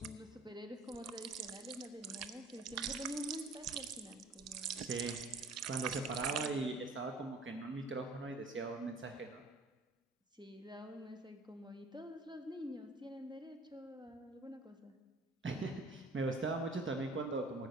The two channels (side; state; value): left; quieter; 3.0 dB